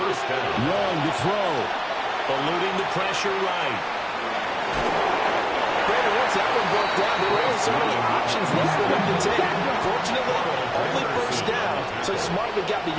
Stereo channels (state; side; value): identical; both; correlation 1.00